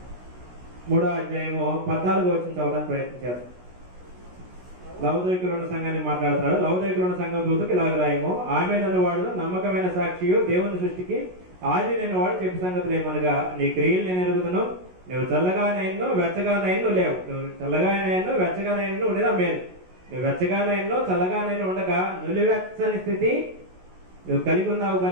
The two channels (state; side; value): late; left; 16 ms